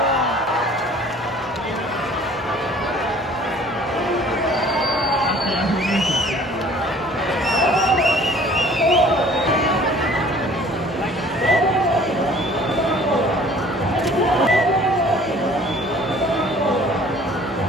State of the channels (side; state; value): both; normal; correlation 0.52